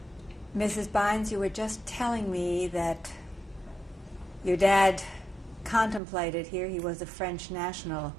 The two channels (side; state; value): left; drops out; at 6.0 s